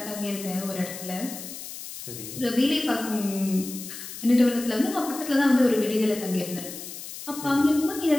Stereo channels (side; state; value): left; noise; hiss, 11 dB below the sound